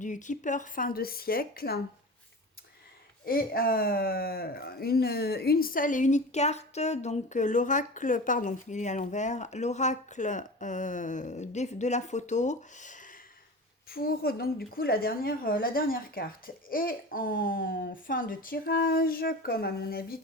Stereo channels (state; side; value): normal; both; correlation 0.32